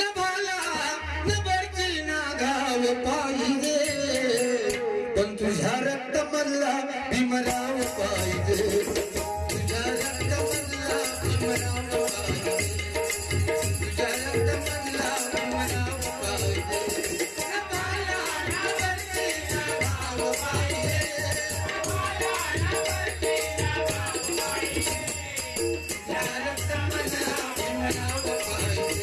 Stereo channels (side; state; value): both; identical; correlation 1.00